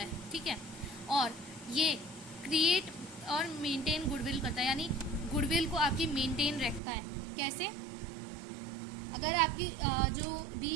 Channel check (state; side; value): drops out; left; at 6.8 s